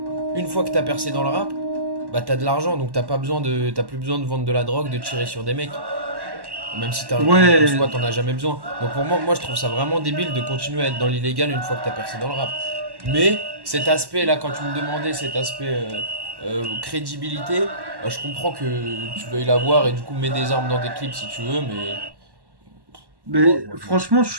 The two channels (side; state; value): left; late; 1.1 ms